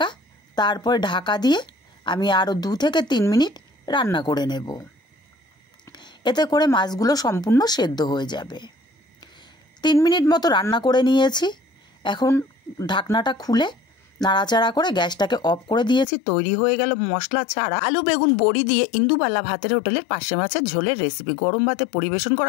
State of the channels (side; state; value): right; drops out; at 16.1 s